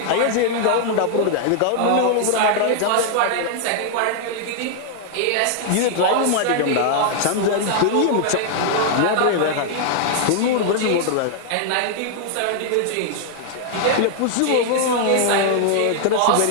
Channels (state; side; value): different; both; correlation -0.01